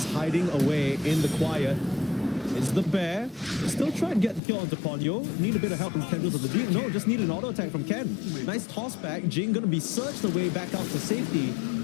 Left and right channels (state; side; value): drops out; right; at 4.4 s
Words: hiding away in the quiet. It's the bear. Still try and get the kill onto Ponyo. Need a bit of help from Tendrils of the Deep. No, just need an auto attack from Ken. Nice toss back. Jing gonna be searched away back out to safety.